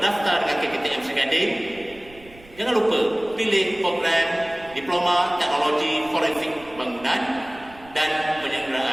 dengan KKTM Seri Gading. Jangan lupa pilih program Diploma Teknologi Forensik Bangunan dan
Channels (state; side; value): noise; right; rumble, 23 dB below the sound